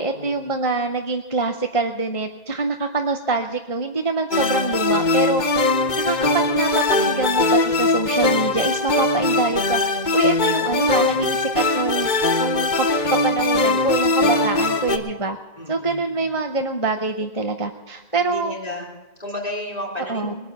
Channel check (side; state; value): right; late; 2.2 ms